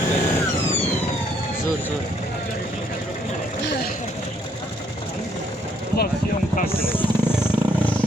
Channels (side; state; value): both; normal; correlation 0.68